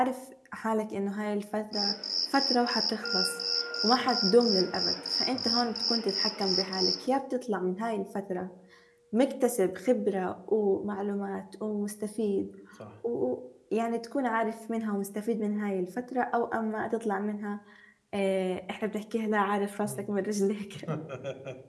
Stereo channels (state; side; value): identical; both; correlation 1.00